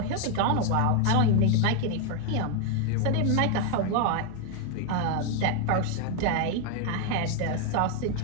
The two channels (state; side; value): different; both; correlation 0.01